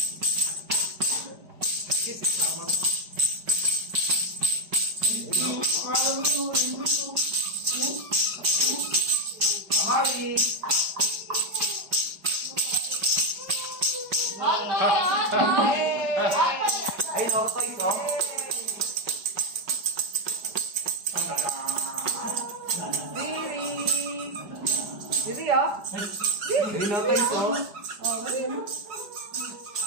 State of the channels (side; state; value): left; late; 4.9 ms